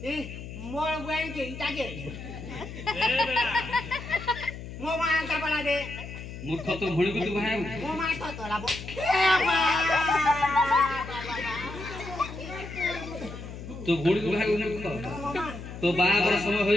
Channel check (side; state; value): left; noise; hum, 11 dB below the sound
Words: ଏ ମୋର ବୁଆଇ କେ ଇଟାକେ ମୋ ମା କା ବଳା ଦେ ମୂର୍ଖ ତୋ ଭଉଣୀକୁ ତୁ ବାହାବୁ ମୋ ମା ତ ତୋରାବ ତୋ ଭଉଣୀକୁ ବାହାବୁ ମୂର୍ଖ ତୋ ବାହାଘର ସମୟ